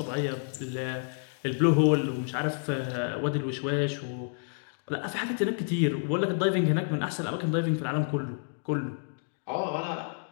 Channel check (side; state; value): right; silent; digital silence